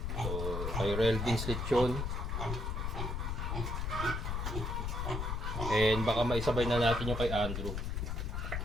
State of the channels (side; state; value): left; noise; rumble, 2 dB below the sound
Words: So, kay Relvin's Lechon. And baka maisabay na natin yung kay Andrew.